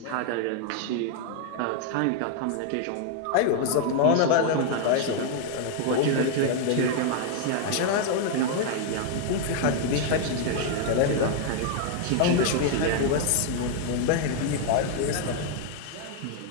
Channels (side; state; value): both; different; correlation 0.00